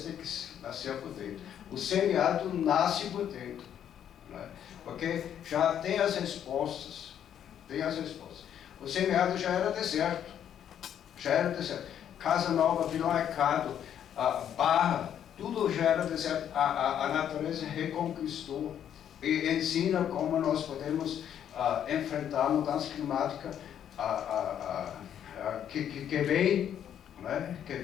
tem que nascer por dentro. O semiárido nasce por dentro, né? Porque já tem as respostas. O semiárido já era deserto. Casa Nova, Vila Mercado, Barra, tudo já era deserto. A natureza reconquistou e ensina como nós podemos enfrentar a mudança climática que vem, né?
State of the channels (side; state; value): right; quieter; 9.6 dB